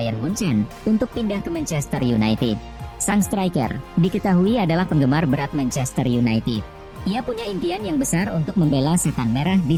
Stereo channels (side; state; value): both; identical; correlation 1.00